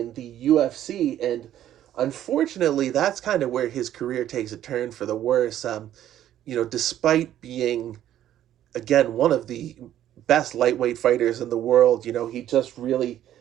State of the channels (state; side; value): quieter; left; 11.8 dB